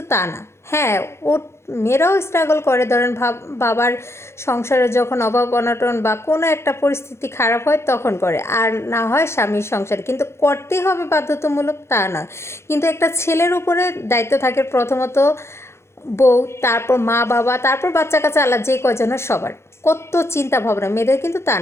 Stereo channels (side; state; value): right; late; 0.13 ms